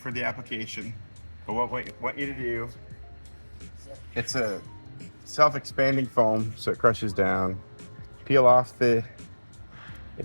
the application, but what we want you to do, it's a self-expanding foam, so it crushes down. Peel off the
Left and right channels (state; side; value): inverted; both; correlation -1.00